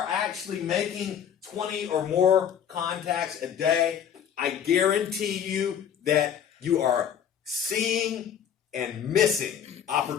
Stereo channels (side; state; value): right; quieter; 8.8 dB